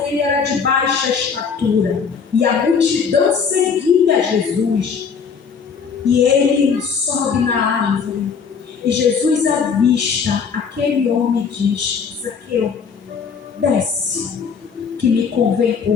ele era de baixa estatura, e a multidão seguia Jesus. E ele sobe na árvore, e Jesus avista aquele homem e diz: Zaqueu, desce, que me convém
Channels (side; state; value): right; quieter; 6.1 dB